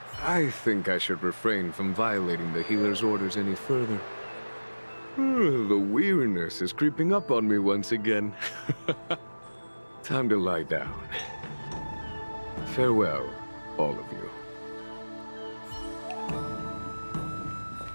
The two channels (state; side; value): inverted; both; correlation -1.00